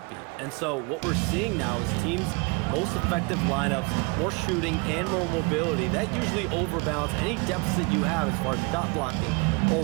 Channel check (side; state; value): left; quieter; 29.5 dB